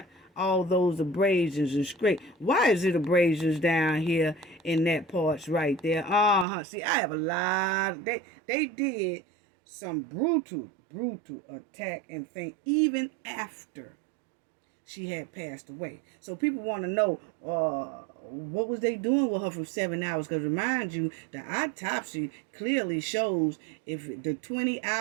All those abrasions and scrape. Why is it abrasions down here in that parts right there? See, I have a lot. They did some brutal attack and thing even after she had passed away. So people want to know what was they doing with her for 7 hours? Because remind you, the autopsy clearly shows if the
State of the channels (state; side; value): drops out; left; at 6.5 s